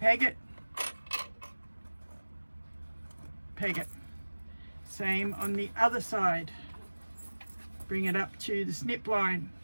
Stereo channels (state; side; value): inverted; both; correlation -1.00